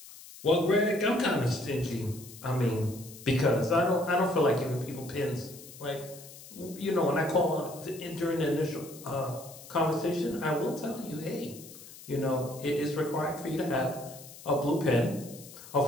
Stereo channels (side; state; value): left; noise; hiss, 17 dB below the sound